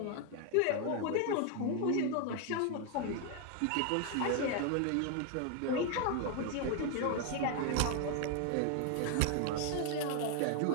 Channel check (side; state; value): both; different; correlation 0.00